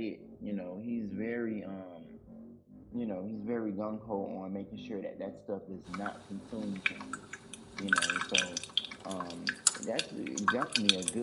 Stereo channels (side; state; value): both; identical; correlation 1.00